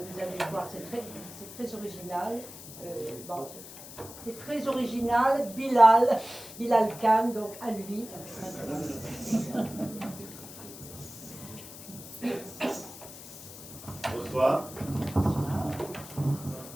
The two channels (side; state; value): left; noise; hiss, 14 dB below the sound